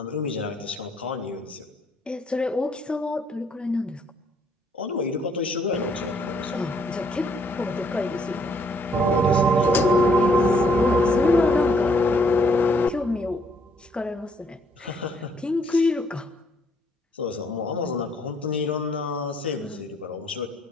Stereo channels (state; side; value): normal; both; correlation 0.67